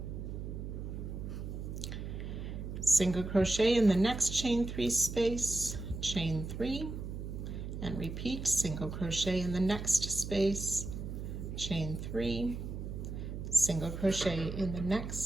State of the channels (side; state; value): right; noise; hum, 6 dB below the sound